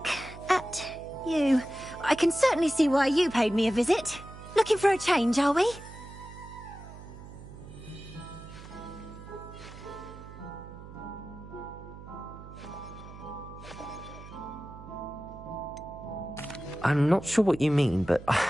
at you. I can certainly see why you paid me a visit. Looking for a change, are we? I'm not sure what you mean, but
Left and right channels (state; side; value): noise; right; hum, 15 dB below the sound